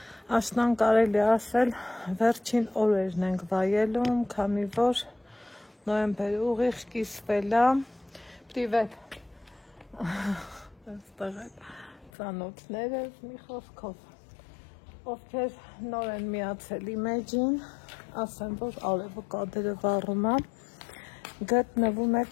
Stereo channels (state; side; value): drops out; right; at 12.1 s